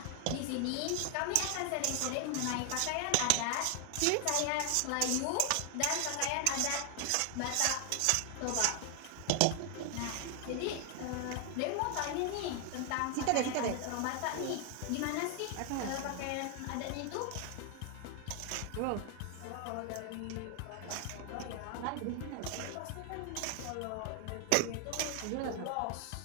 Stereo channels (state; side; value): different; both; correlation 0.00